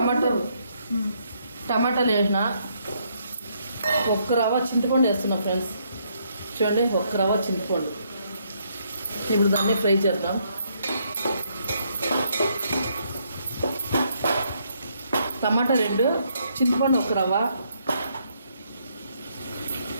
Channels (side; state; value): both; inverted; correlation -0.72